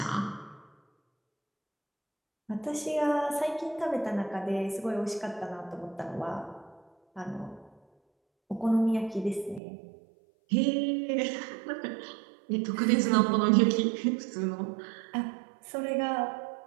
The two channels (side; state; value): left; drops out; at 9.6 s